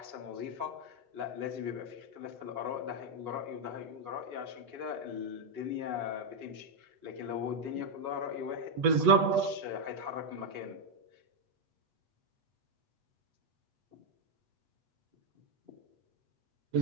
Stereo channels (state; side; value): late; left; 8.2 ms